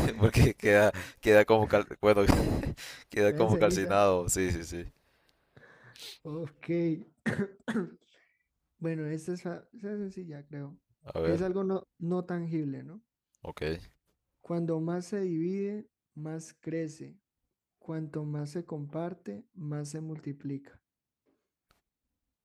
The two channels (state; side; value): identical; both; correlation 1.00